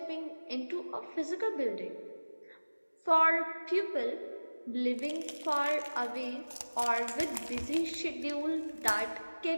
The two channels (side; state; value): both; inverted; correlation -1.00